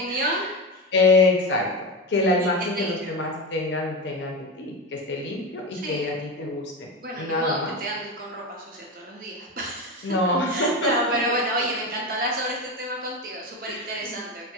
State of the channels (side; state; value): both; normal; correlation 0.20